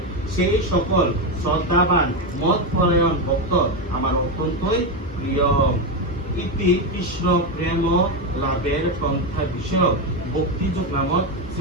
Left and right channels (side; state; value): both; normal; correlation 0.10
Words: সেই সকল শ্রদ্ধাবান মতপরায়ণ ভক্ত আমার অত্যন্তই প্রিয়। ইতি কৃষ্ণ প্রেম লাভের পন্থা বিষয়ক ভক্তিযুগ নামক